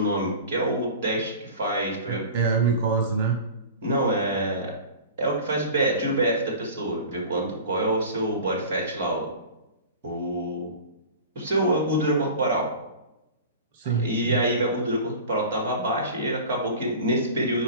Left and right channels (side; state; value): both; inverted; correlation -0.37